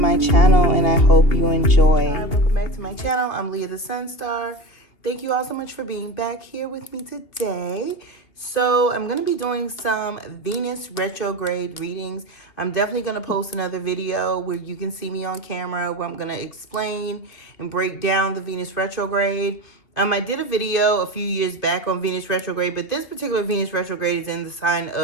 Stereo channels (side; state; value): right; late; 2.5 ms